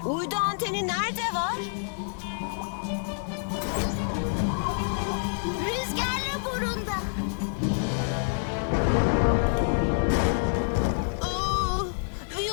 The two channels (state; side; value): silent; right; 60 dB below the other